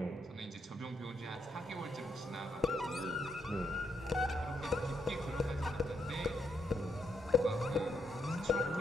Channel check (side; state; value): both; normal; correlation 0.77